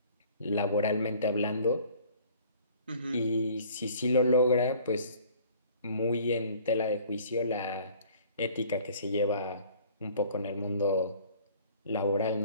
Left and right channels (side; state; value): both; inverted; correlation -0.52